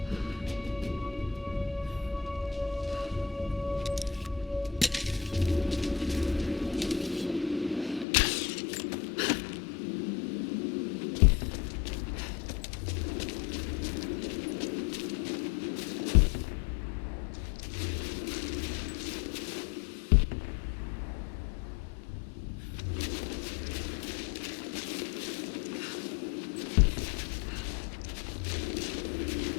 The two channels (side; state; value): right; drops out; at 8.1 s